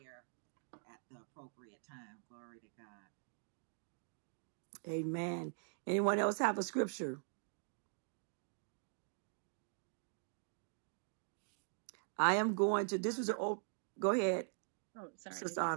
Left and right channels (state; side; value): silent; left; digital silence